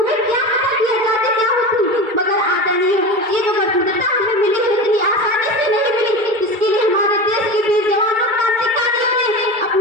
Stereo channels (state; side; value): late; left; 2.3 ms